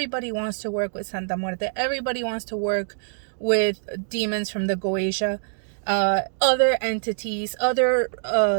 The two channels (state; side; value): silent; left; digital silence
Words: wants to work with Santa Muerte. Everybody wants to work with demons from the Goetia, other entities, other